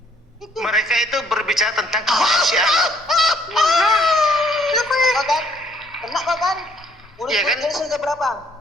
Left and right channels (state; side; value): normal; both; correlation 0.64